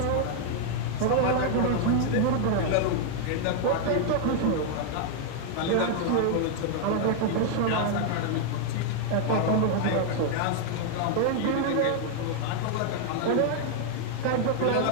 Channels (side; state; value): both; different; correlation 0.00